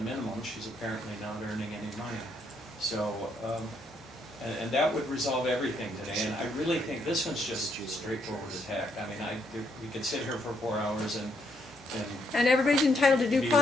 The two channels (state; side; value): normal; both; correlation 0.74